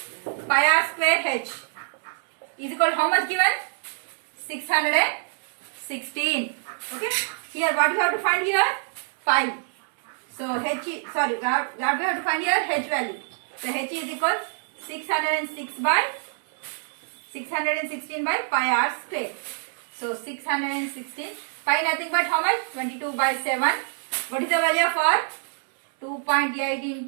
pi r square h is equal to how much given? 616. Okay. Here what you have to find here? Pi. So h, sorry, what we have to find here? H value. So h is equal 616 by 616 by pi r square. So 616. Pi nothing but how much? 22 by 7. What is the value for? 2.8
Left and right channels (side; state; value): left; silent; 61 dB below the other